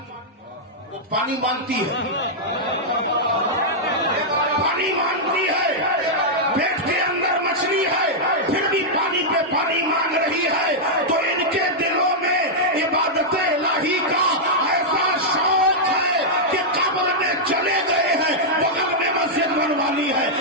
وہ پانی مانگتی ہے، پانی مانگتی ہے. پیٹ کے اندر مچھلی ہے پھر بھی پانی پہ پانی مانگ رہی ہے. تو ان کے دلوں میں عبادت الہی کا ایسا شوق ہے کہ قبر میں چلے گئے ہیں، بغل میں مسجد بنوانی ہے،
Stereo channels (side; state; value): both; normal; correlation -0.06